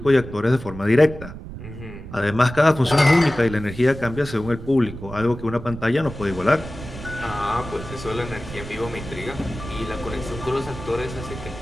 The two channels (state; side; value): noise; right; rumble, 12 dB below the sound